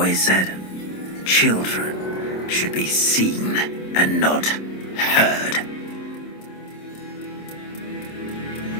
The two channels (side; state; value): right; late; 26 ms